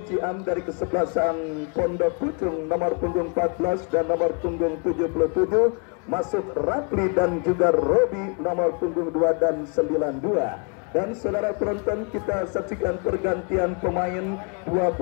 Ciam dari kesebelasan Pondok Pucung nomor punggung 14 dan nomor punggung 77 masuk Rapli dan juga Robi nomor punggung 2 dan 92. Dan saudara penonton, kita saksikan pergantian pemain. Dua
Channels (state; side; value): quieter; right; 36.0 dB